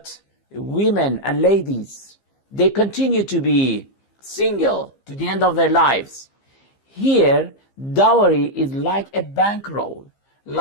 women and ladies, they continue to be single to the end of their lives. Here, dowry is like a bankroll,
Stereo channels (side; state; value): right; late; 15 ms